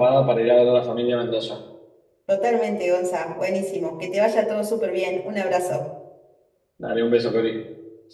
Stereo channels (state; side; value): identical; both; correlation 1.00